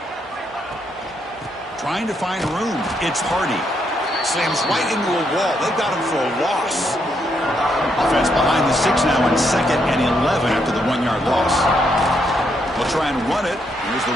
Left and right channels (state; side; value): normal; both; correlation 0.77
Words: Trying to find room. It's Hardy. Slams right into a wall. They've got him for a loss. Offense behind the 6 now in 2nd and 11 after the 1-yard loss. We'll try and run it. Here's the